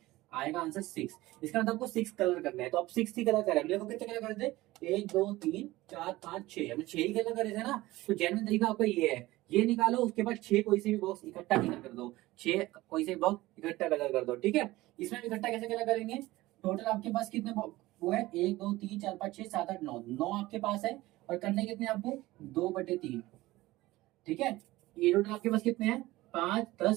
आएगा आंसर 6। इसका मतलब आपको 6 कलर करना है, तो आप 6 ही कलर करें, देखो कितने कलर कर दे, 1 2 3 4 5 6, हमने 6 ही कलर करे थे ना। तो जेन्युइन तरीका आपका ये है, ये निकालो, उसके बाद 6 कोई से भी बॉक्स इकट्ठा कलर कर दो, 6 कोई से भी बॉक्स इकट्ठा कलर कर दो, ठीक है। इसमें इकट्ठा कैसे कलर करेंगे, टोटल आपके पास कितने वो है, 1 2 3 4 5 6 7 8 9, 9 आपके पास है, और करने कितने आपको, 2/3, ठीक है। ये टोटल आपके पास कितने हैं, 5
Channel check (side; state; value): left; quieter; 18.3 dB